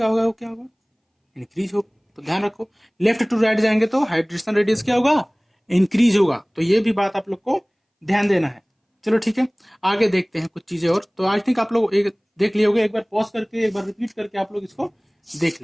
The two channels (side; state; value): both; identical; correlation 1.00